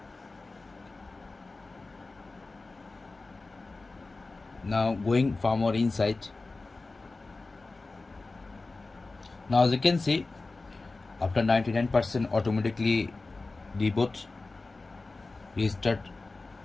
Now going far more inside. Now as you can see, after 99% automatically reboot, restart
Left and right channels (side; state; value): right; quieter; 3.5 dB